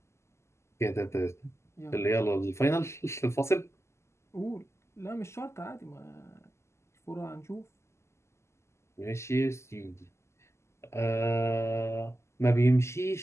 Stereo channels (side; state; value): right; late; 0.13 ms